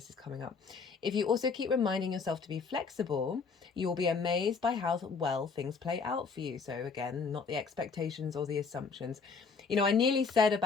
is coming up. If you also keep reminding yourself to be flexible, you'll be amazed by how well things play out for you. So again, not the expectations or the assumptions. You know, I nearly said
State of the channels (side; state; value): right; quieter; 5.0 dB